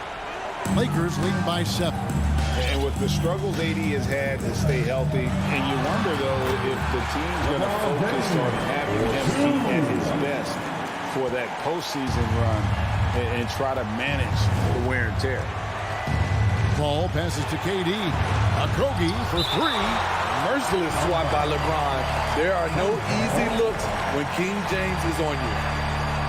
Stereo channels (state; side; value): identical; both; correlation 1.00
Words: Lakers leading by 7. And with the struggles AD has had to stay healthy, and you wonder, though, if the team's going to focus on having him be at his best for that postseason run and try to manage the wear and tear. Ball passes to KD. Okogie for 3. Merciless swat by LeBron. There are no easy looks when King James is on you.